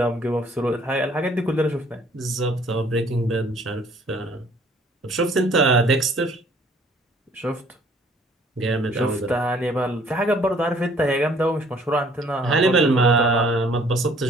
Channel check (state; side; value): normal; both; correlation 0.59